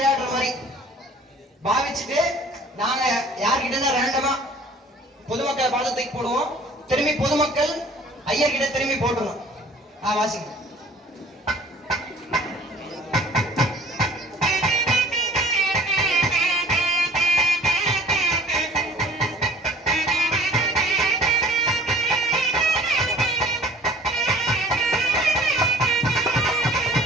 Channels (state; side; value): normal; both; correlation 0.50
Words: மாதிரி பாவிச்சுட்டு நாங்க யார்கிட்ட ரேண்டமா பொதுமக்களை பார்த்து தூக்கி போடுவோம். திரும்பி பொதுமக்கள் ஐயர்கிட்ட திரும்பி போட்டுருவோம். வாசிங்க.